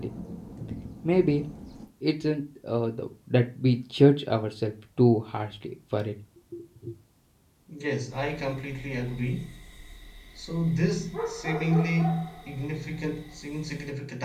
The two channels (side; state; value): both; identical; correlation 1.00